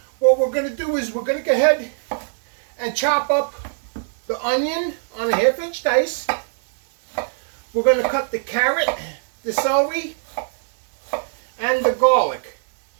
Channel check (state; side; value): silent; left; digital silence